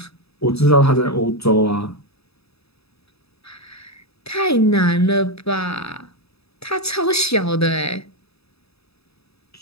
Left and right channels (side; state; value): right; late; 0.78 ms